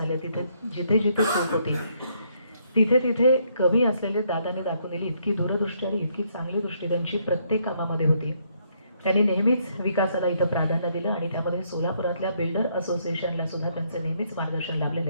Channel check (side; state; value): both; inverted; correlation -0.71